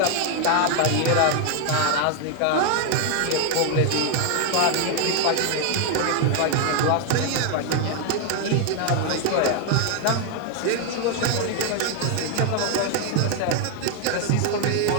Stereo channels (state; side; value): different; both; correlation 0.00